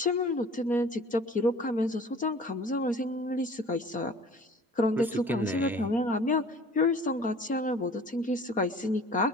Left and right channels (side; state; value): both; normal; correlation 0.47